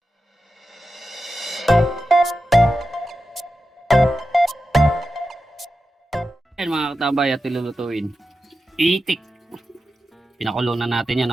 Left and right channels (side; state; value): both; normal; correlation 0.91